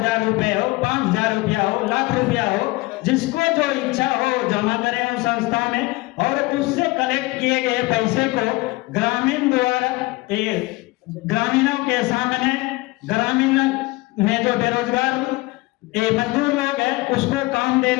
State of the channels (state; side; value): quieter; right; 22.0 dB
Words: रुपए हो, 5000 रुपया हो, लाख रुपया हो, जिसको जो इच्छा हो जमा करें उस संस्था में, और उससे कलेक्ट किए गए पैसे को ग्रामीण द्वारा ग्रामीणों के सामने, ग्रामीण में जो बेरोजगार मजदूर लोग हैं उसको काम